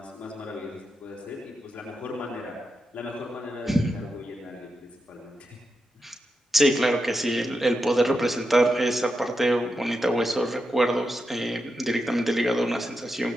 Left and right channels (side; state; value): both; normal; correlation 0.87